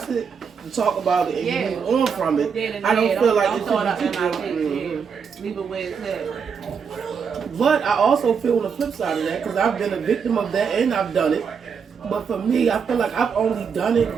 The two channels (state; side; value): quieter; left; 6.4 dB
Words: it, you talk about it, and Yeah. you move on from it. Dead and I don't dead. feel like don't it throw it up should in my be. face. Yeah. Leave it where it's at. But I also feel on the flip side of that, because I've been a victim of that and I've done it. But for me, I feel like I've only done it